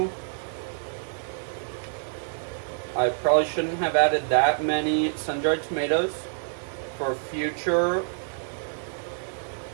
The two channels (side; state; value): left; silent; digital silence